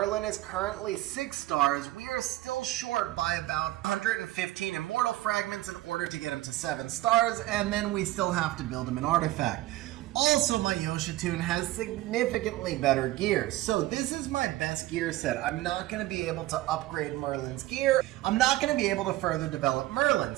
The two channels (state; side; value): quieter; left; 16.6 dB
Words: is currently 6 stars. We are still short by about 115 immortal fragments in order to get him to 7 stars, and then we still have to build him an artifact. Also, my Yoshitun has significantly better gear. So this is my best gear set. I'm not going to be able to upgrade Merlin's gear. I'm not going to be able to further develop Merlin.